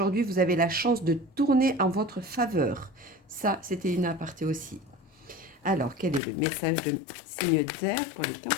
vous avez la chance de tourner en votre faveur. Ça, c'était une aparté aussi. Alors, quel est le message de signe d'air pour les 15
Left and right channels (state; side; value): drops out; right; at 6.2 s